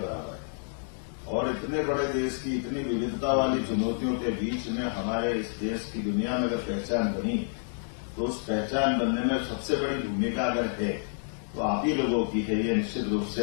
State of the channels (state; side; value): silent; right; digital silence